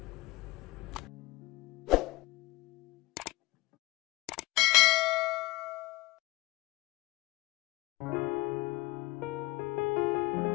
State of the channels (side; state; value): right; quieter; 20.8 dB